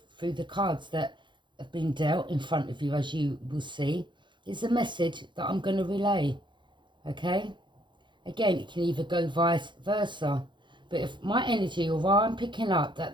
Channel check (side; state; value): left; late; 0.23 ms